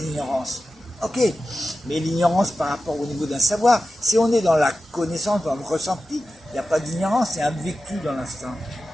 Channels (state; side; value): normal; both; correlation 0.93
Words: Ok, mais l'ignorance par rapport au niveau d'un savoir, si on est dans la connaissance, dans le ressenti, il n'y a pas d'ignorance, c'est un vécu dans l'instant.